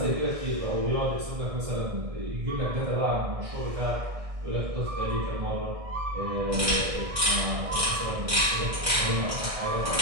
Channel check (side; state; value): left; late; 1.6 ms